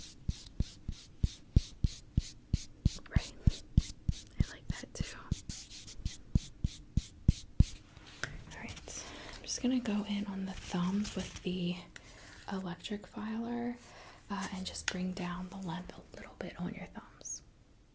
Right. I like that too. Alright. I'm just gonna go in on the thumbs with the electric filer and just bring down the length a little bit on your thumbs.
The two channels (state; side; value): identical; both; correlation 1.00